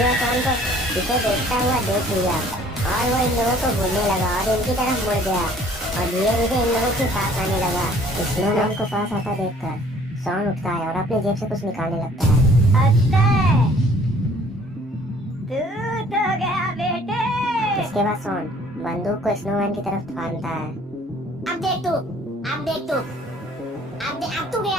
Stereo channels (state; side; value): normal; both; correlation 0.56